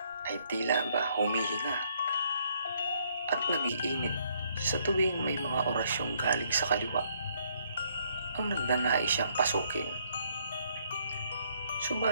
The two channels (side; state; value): both; inverted; correlation -0.69